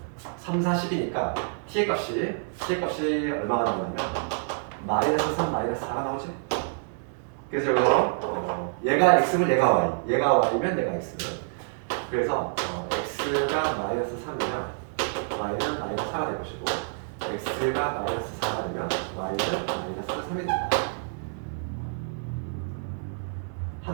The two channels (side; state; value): left; silent; digital silence